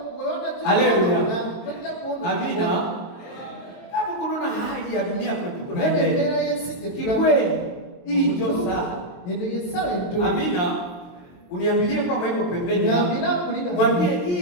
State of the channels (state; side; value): late; right; 22 ms